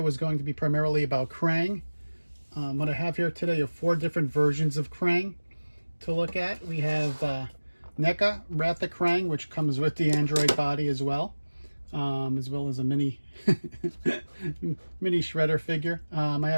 is going to be primarily about Krang. What I have here today are 4 different versions of Krang to look at. We have Neca, Wrath of Krang, which comes with the Android body as well as a mini mini shredder figure. I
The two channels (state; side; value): inverted; both; correlation -1.00